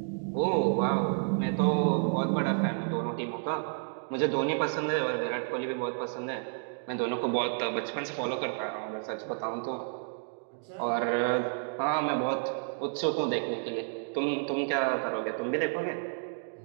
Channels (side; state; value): left; silent; 57 dB below the other